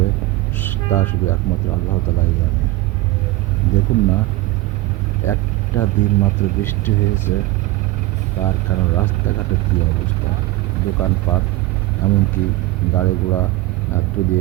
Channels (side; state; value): left; quieter; 18.4 dB